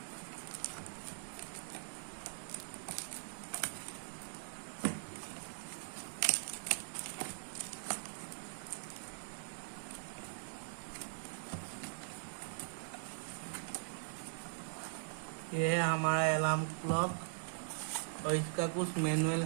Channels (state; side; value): silent; left; digital silence